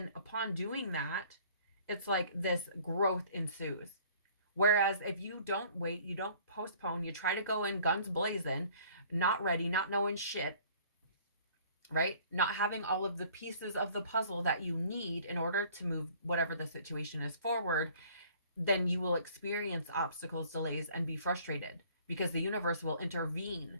upon doing that, it's like this growth ensues. Whereas if you don't wait, you don't postpone, you try to go in guns blazing, not ready, not knowing shit, right? Not having all of the pieces of the puzzle that you need in order to move whatever the situation is forward, then you will experience obstacles, delays, and be frustrated because the universe will intervene,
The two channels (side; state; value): both; inverted; correlation -0.54